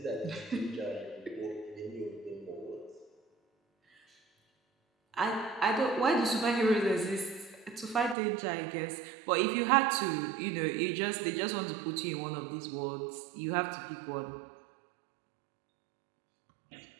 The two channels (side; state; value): left; drops out; at 8.2 s